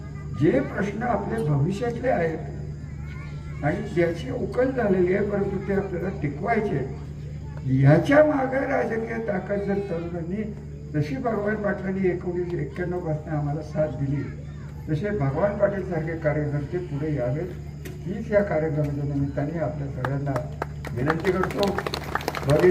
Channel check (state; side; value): identical; both; correlation 1.00